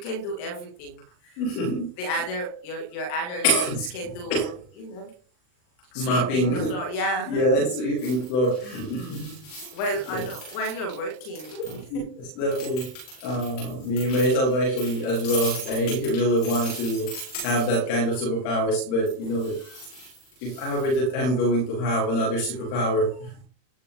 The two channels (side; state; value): right; late; 39 ms